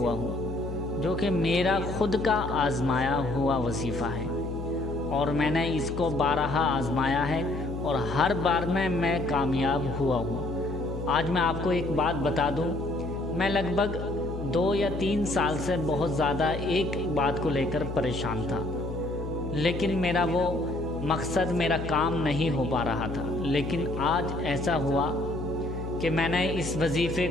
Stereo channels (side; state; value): left; noise; hum, 7 dB below the sound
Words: ہوں جو کہ میرا خود کا آزمایا ہوا وظیفہ ہے، اور میں نے اس کو بارہا آزمایا ہے اور ہر بار میں کامیاب ہوا ہوں۔ آج میں آپ کو ایک بات بتا دوں، میں لگ بھگ 2 یا 3 سال سے بہت زیادہ ایک بات کو لے کر پریشان تھا، لیکن میرا وہ مقصد، میرا کام نہیں ہو پا رہا تھا۔ لیکن آج ایسا ہوا کہ میں نے اس وظیفے